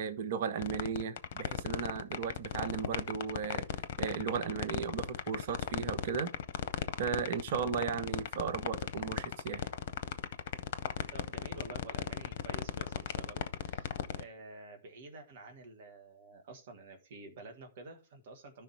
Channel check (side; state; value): both; inverted; correlation -0.36